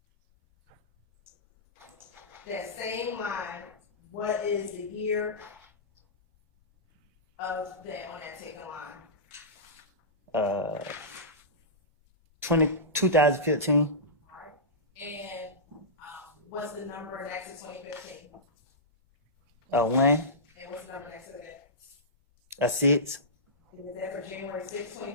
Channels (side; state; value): both; normal; correlation -0.17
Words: you. That same line, what is the year of that on that taken line? 2015. All right. And what's the number next to 2015? 1. And what's the number next to that? A 6. And is that for January 6,